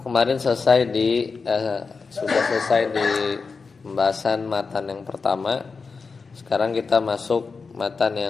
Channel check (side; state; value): right; quieter; 4.7 dB